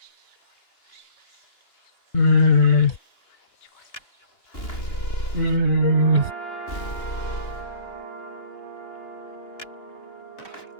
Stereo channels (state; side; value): late; right; 2.9 ms